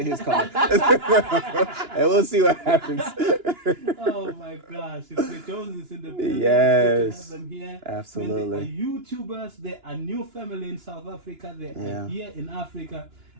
his car, and we'll see what happens. Oh my gosh, it's the Joneses in the building. Yes. It's good to have them here. Absolutely. When they are YouTubers, they are new family in South Africa. They are here in Africa.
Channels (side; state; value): left; late; 2.9 ms